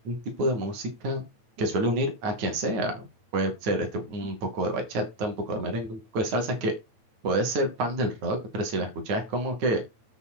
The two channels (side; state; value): left; late; 8.9 ms